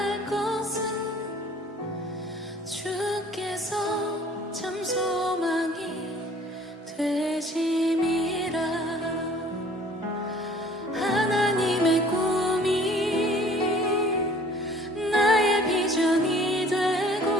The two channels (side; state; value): both; normal; correlation 0.52